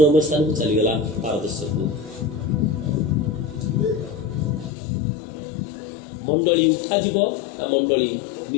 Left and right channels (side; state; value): right; drops out; at 4.7 s